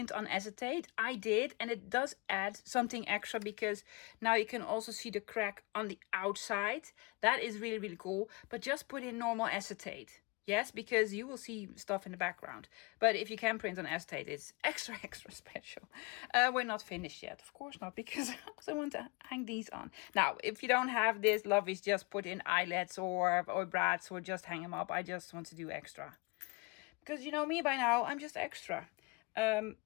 on acetate. I did, and it does add something extra because now you can also see the crack on the outside. That is really, really cool. But just put in normal acetate. Yes, because you will see stuff in the background. But if you can print on acetate, it's extra, extra special. We're not finished yet. Of course not, because I also want to hang these on. Now, if you don't have this, lovies, just put in eyelets or brads or just hang them up. I just want to do extra. Because you know me by now, I'm just extra. I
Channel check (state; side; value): quieter; right; 27.8 dB